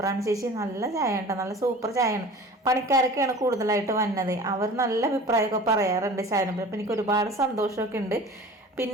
ചേച്ചി നല്ല ചായ ഉണ്ട്, നല്ല സൂപ്പർ ചായയാണ്. പണിക്കാരൊക്കെയാണ് കൂടുതലായിട്ട് വന്നത്. അവർ നല്ല അഭിപ്രായമൊക്കെ പറയാറുണ്ട് ചായനെ. അപ്പം എനിക്ക് ഒരുപാട് സന്തോഷമൊക്കെ ഉണ്ട്.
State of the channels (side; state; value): both; normal; correlation 0.41